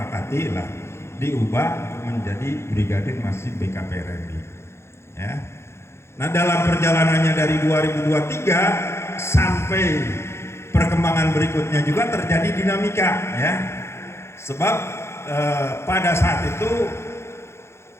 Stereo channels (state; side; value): late; right; 0.13 ms